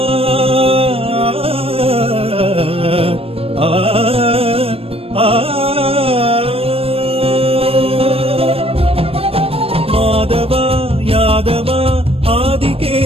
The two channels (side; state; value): left; late; 0.28 ms